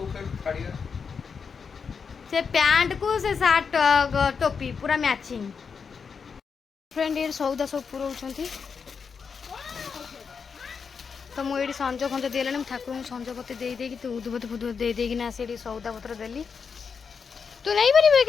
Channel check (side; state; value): right; quieter; 5.9 dB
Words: से पैंट को से सार्ट टोपी पूरा मैचिंग फ्रेंड ये सौदा सब पुराउछंती तो मुझे संज फंज देला ठाकुर संज पत्र दे देकी तू उद्भूत फुद्भूत दे देकी ना से सौदा पत्र देली तू नहीं पारे